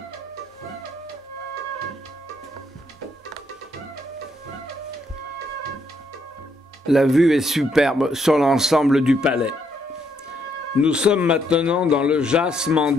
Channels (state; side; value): normal; both; correlation 0.74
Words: La vue est superbe sur l'ensemble du palais. Nous sommes maintenant dans le Jas